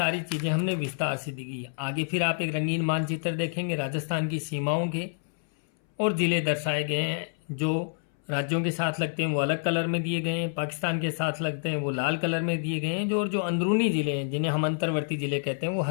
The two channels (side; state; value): right; silent; 59 dB below the other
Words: चीज़ें हमने विस्तार से दी है। आगे फिर आप एक रंगीन मानचित्र देखेंगे राजस्थान की सीमाओं के, और जिले दर्शाए गए हैं। जो राज्यों के साथ लगते हैं वो अलग कलर में दिए गए हैं, पाकिस्तान के साथ लगते हैं वो लाल कलर में दिए गए हैं, जो अंदरूनी जिले हैं जिन्हें हम अंतर्वर्ती जिले कहते हैं वो